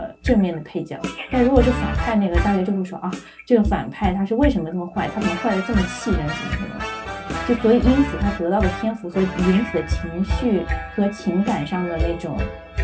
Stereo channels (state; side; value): identical; both; correlation 1.00